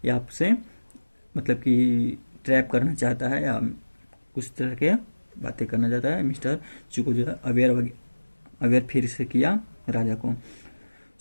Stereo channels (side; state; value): both; inverted; correlation -1.00